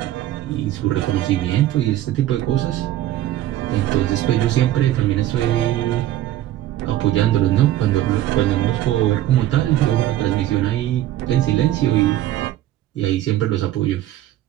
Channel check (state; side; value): quieter; left; 13.6 dB